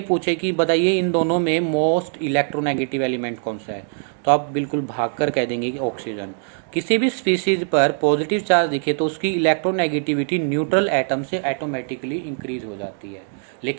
पूछे कि बताइए इन दोनों में मोस्ट इलेक्ट्रोनेगेटिव एलिमेंट कौन सा है, तो आप बिल्कुल भागकर कह देंगे कि ऑक्सीजन। किसी भी स्पीसीज पर पॉजिटिव चार्ज दिखे तो उसकी इलेक्ट्रोनेगेटिविटी न्यूट्रल एटम से ऑटोमेटिकली इंक्रीज हो जाती है।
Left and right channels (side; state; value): left; silent; digital silence